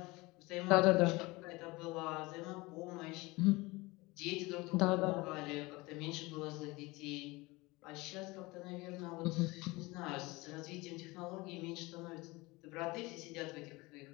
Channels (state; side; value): quieter; right; 22.7 dB